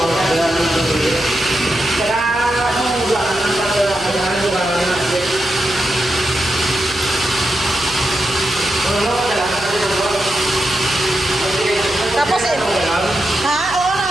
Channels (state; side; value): noise; left; hum, 17 dB below the sound